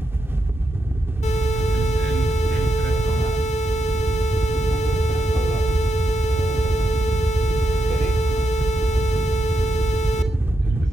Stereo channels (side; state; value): both; normal; correlation 0.84